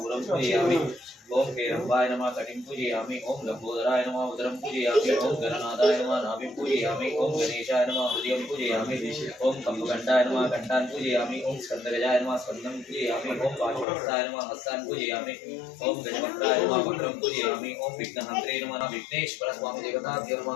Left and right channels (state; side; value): drops out; right; at 13.9 s